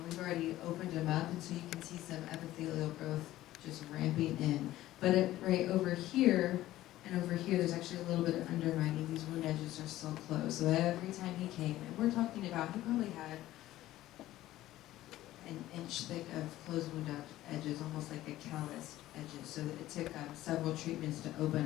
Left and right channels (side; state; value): right; quieter; 15.1 dB